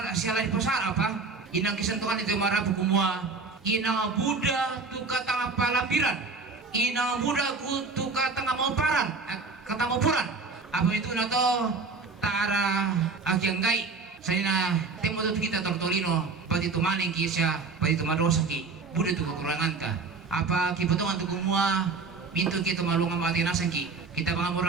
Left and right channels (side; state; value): left; quieter; 4.3 dB